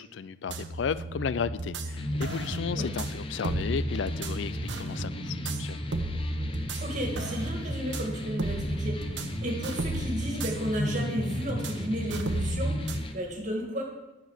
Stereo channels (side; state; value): both; normal; correlation 0.62